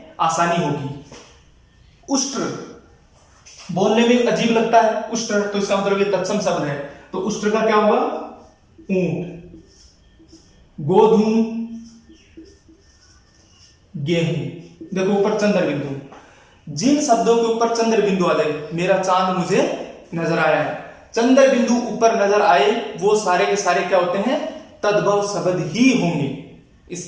आसानी होगी। उष्ट्र बोलने में अजीब लगता है, उष्ट्र, तो इसका मतलब ये तत्सम शब्द है। तो उष्ट्र का क्या होगा? ऊंट। गोधूम, गेहूं। देखो ऊपर चंद्र बिंदु, जिन शब्दों के ऊपर चंद्र बिंदु आ जाए, मेरा चांद मुझे नजर आया है, चंद्र बिंदु ऊपर नजर आए, वो सारे के सारे क्या होते हैं? तद्भव शब्द ही होंगे,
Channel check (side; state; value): both; identical; correlation 1.00